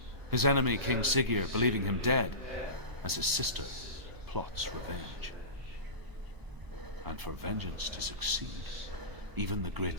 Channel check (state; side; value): late; left; 1.0 ms